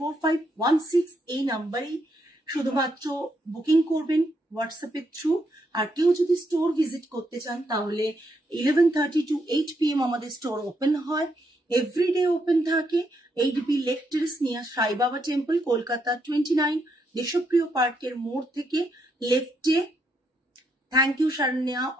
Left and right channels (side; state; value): both; normal; correlation 0.78